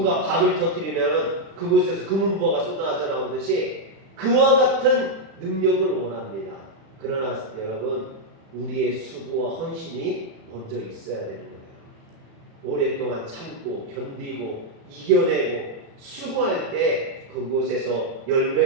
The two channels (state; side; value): late; left; 36 ms